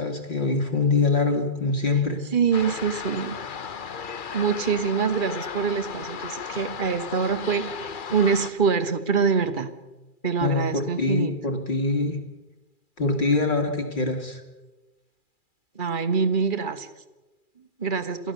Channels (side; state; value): right; late; 2.4 ms